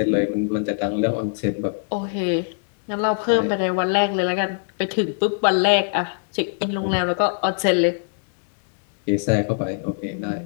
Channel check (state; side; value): silent; right; digital silence